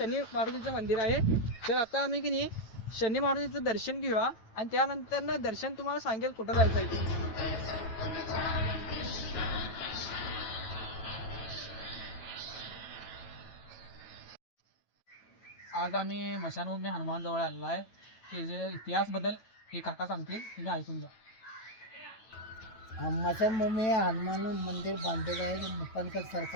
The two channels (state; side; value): late; right; 9.1 ms